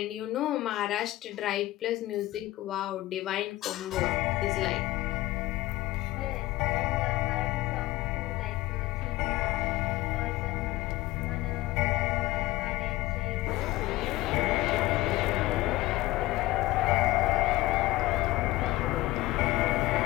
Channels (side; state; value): right; quieter; 17.9 dB